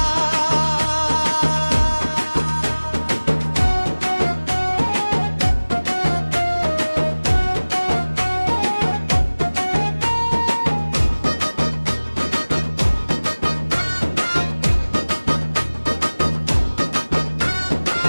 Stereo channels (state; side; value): inverted; both; correlation -1.00